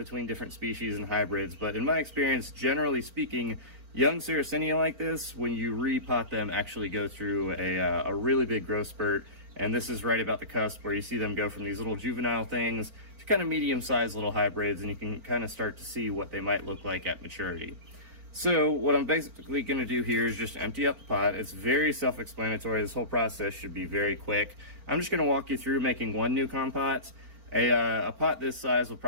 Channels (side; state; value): left; late; 4.4 ms